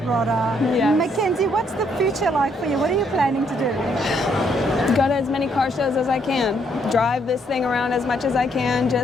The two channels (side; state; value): both; normal; correlation 0.71